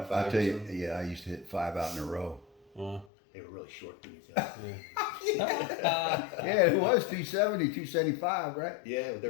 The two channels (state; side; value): drops out; right; at 3.1 s